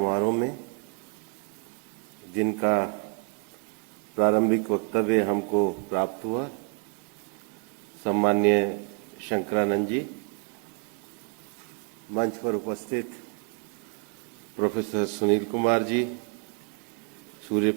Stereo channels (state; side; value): quieter; left; 35.1 dB